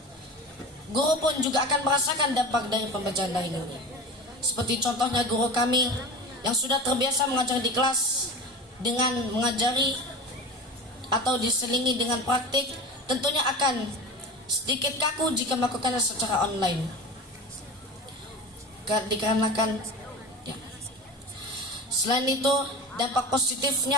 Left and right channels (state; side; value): normal; both; correlation 0.32